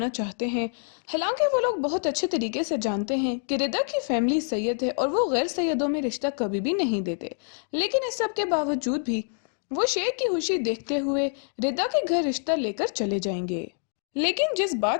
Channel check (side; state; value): right; silent; digital silence